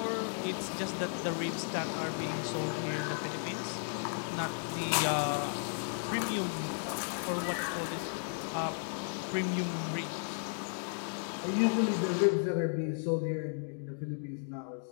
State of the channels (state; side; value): silent; right; digital silence